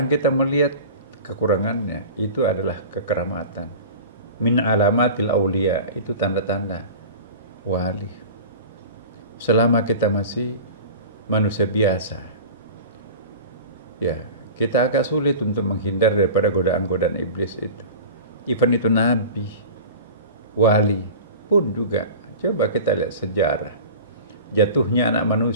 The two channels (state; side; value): inverted; both; correlation -0.35